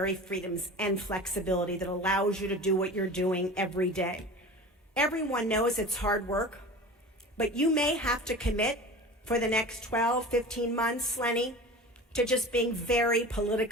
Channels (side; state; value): both; normal; correlation 0.35